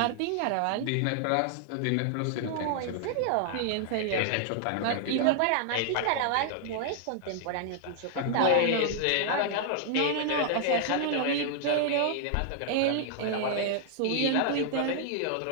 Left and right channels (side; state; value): both; different; correlation 0.00